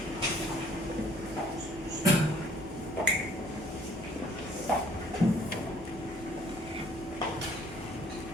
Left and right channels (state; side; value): normal; both; correlation 0.59